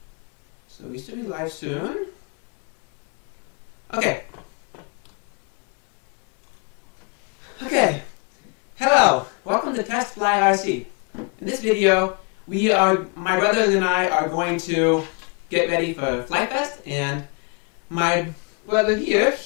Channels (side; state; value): right; quieter; 34.4 dB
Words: So we should be live soon. Okay. Hello. Welcome to Test Fly RC. In this video, my brothers and I are going to get ready for Flite Fest, and my brother here,